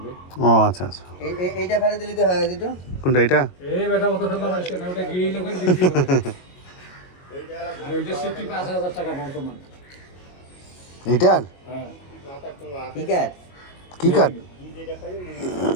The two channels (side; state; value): right; late; 22 ms